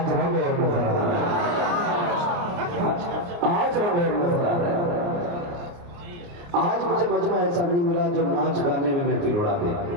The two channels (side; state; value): left; late; 29 ms